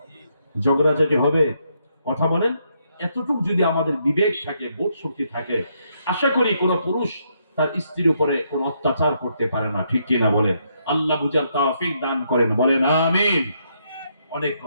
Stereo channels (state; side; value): inverted; both; correlation -0.76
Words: ঝগড়াঝাটি হবে? কথা বলেন। এতটুকু যদি আমাদের বিবেক থাকে, বোধ শক্তি থাকে, আশা করি কোন পুরুষ তার স্ত্রীর উপরে কোন অত্যাচার করতে পারে না, ঠিক কিনা বলেন? আল্লাহ বুঝার তৌফিক দান করেন, বলেন আমিন। অনেক